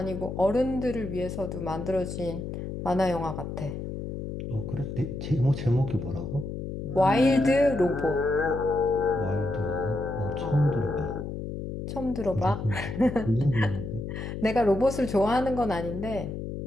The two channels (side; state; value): left; noise; hum, 6 dB below the sound